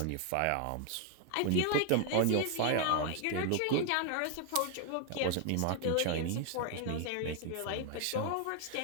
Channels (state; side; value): different; both; correlation 0.00